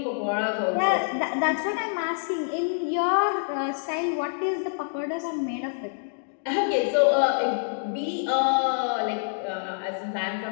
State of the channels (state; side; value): silent; right; digital silence